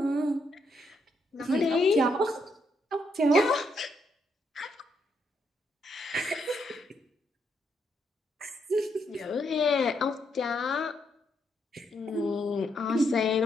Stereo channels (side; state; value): both; normal; correlation 0.77